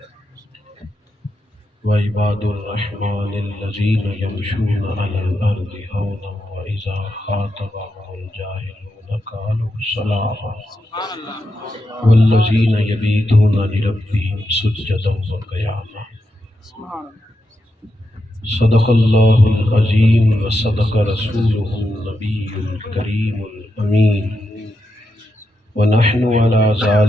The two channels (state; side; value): normal; both; correlation 0.86